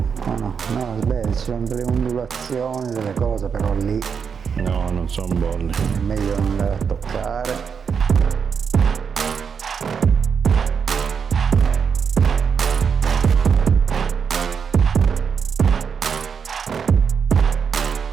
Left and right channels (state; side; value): quieter; left; 6.5 dB